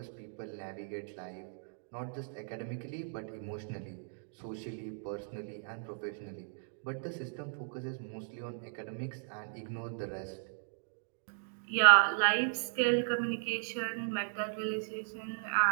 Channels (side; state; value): left; silent; digital silence